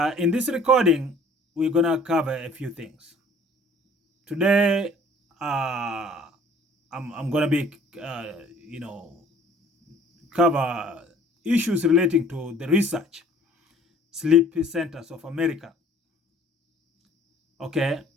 in this recording we're gonna cover a few things. Today, I'm gonna be cover issues relating to the research sleep centers of America. Okay,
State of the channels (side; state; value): both; normal; correlation 0.53